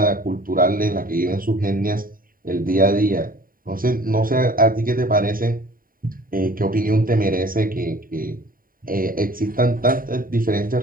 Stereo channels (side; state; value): left; late; 0.41 ms